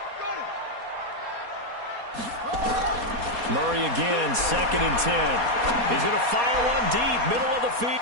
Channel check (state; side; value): late; left; 4.2 ms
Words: Murray again, 2nd and 10. He's going to fire one deep, middle of the field.